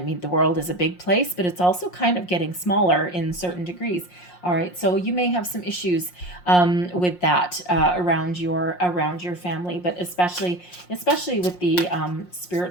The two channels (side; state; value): right; late; 5.6 ms